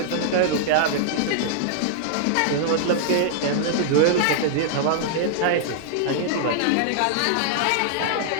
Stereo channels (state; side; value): different; both; correlation -0.01